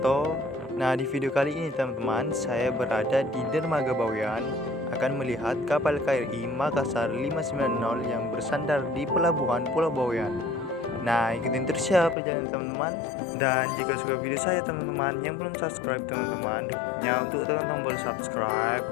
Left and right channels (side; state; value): right; drops out; at 12.2 s